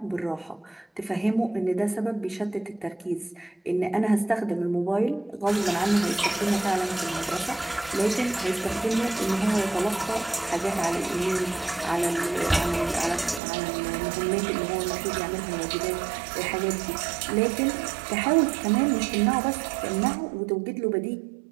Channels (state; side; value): drops out; left; at 13.4 s